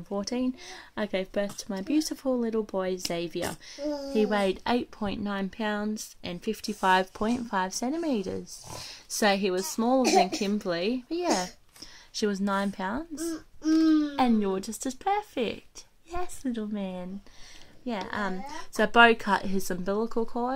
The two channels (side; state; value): both; identical; correlation 1.00